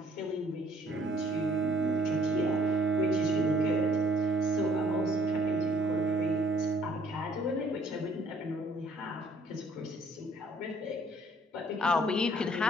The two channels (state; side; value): normal; both; correlation 0.61